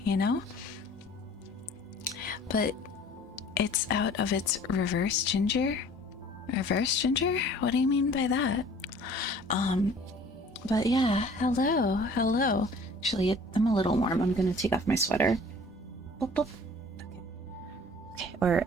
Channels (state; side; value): normal; both; correlation 0.50